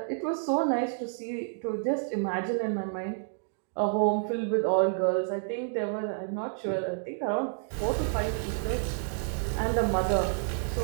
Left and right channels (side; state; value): left; silent; digital silence